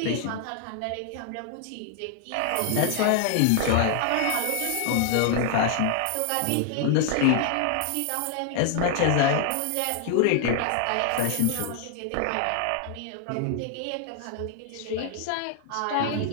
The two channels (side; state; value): both; different; correlation 0.00